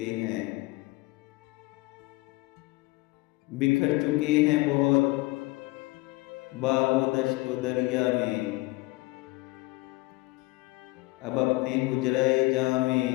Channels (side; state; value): right; quieter; 22.2 dB